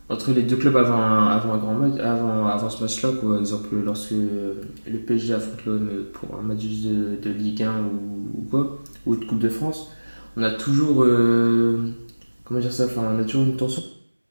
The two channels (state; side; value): inverted; both; correlation -1.00